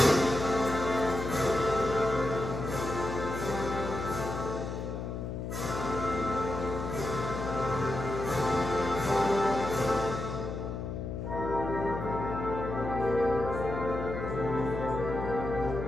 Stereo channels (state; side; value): noise; left; hum, 5 dB below the sound